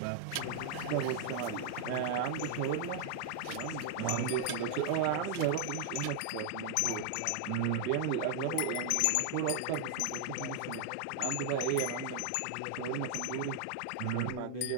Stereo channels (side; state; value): both; different; correlation 0.00